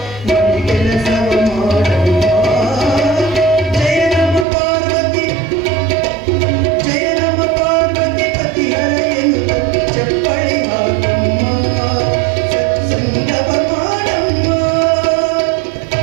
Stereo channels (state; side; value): drops out; left; at 4.5 s